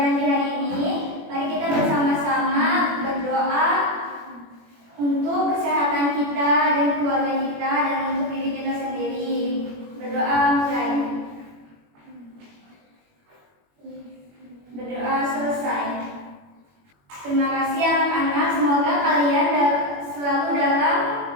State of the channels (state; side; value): late; left; 21 ms